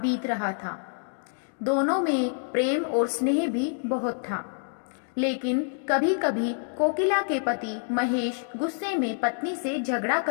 रहा था। दोनों में प्रेम और स्नेह भी बहुत था। लेकिन कभी कभी कोकिला के पति महेश गुस्से में पत्नी से झगड़ा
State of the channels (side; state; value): right; silent; digital silence